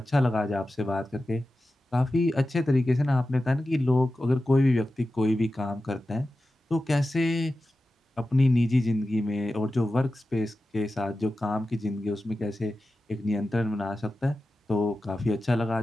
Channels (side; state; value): both; normal; correlation 0.93